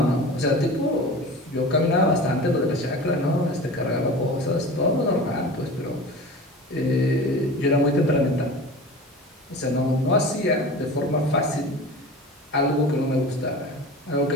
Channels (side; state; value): both; normal; correlation 0.35